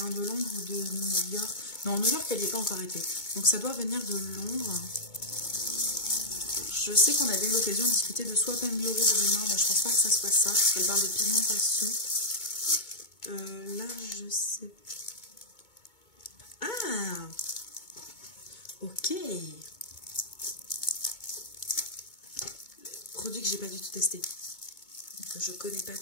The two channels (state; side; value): late; right; 2.2 ms